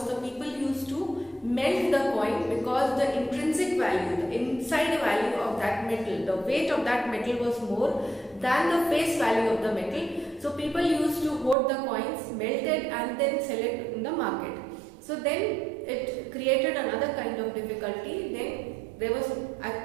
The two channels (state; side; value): drops out; left; at 11.6 s